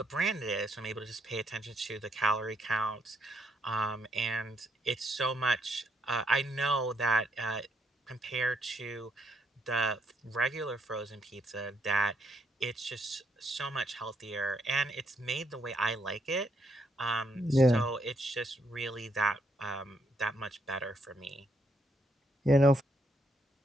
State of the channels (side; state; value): both; normal; correlation 0.75